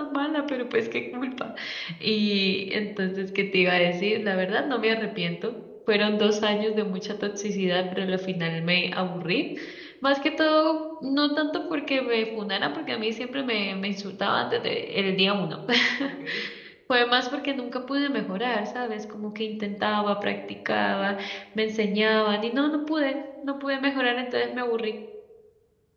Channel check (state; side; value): identical; both; correlation 1.00